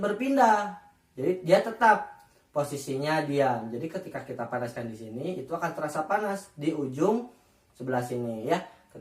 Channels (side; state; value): both; identical; correlation 1.00